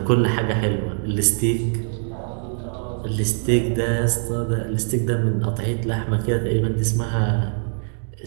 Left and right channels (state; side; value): silent; left; 58 dB below the other